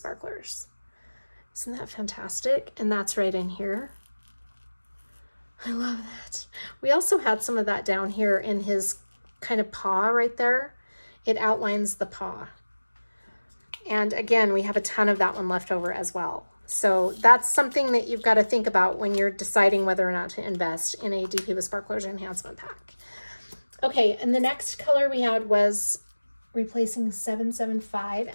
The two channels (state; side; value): inverted; both; correlation -1.00